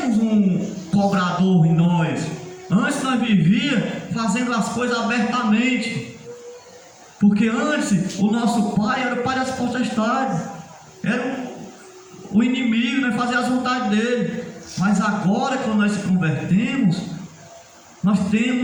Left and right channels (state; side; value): identical; both; correlation 1.00